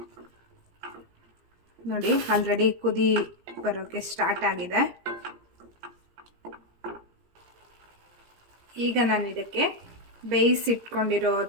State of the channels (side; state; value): left; late; 17 ms